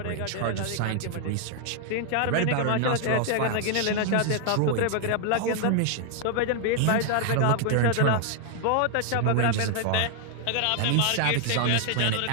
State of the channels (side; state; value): both; different; correlation 0.00